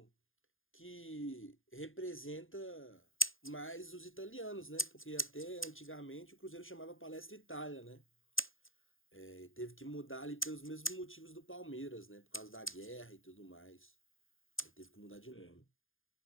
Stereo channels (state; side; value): late; right; 0.59 ms